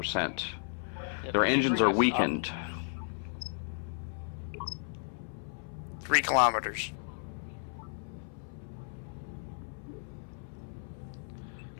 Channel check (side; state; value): right; silent; 55 dB below the other